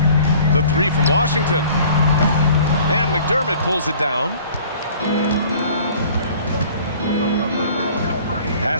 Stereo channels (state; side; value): inverted; both; correlation -0.50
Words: The 3 from Washington. And McDermott pulls it down.